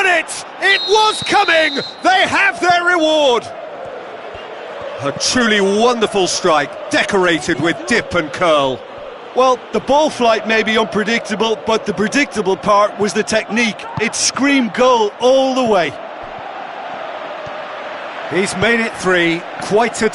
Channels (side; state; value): both; identical; correlation 1.00